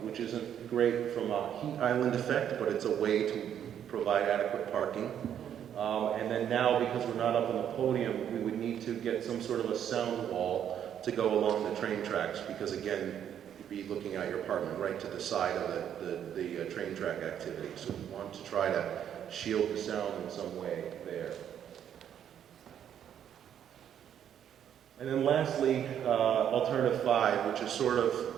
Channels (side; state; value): left; quieter; 9.5 dB